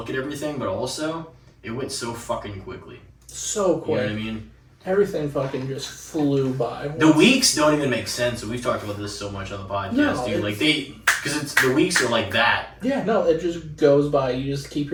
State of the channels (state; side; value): identical; both; correlation 1.00